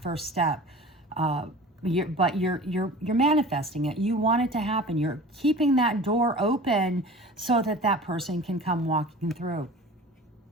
first step. But you're manifesting it. You want it to happen. You're keeping that door open so that person can come walking through.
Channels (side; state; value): both; normal; correlation 0.39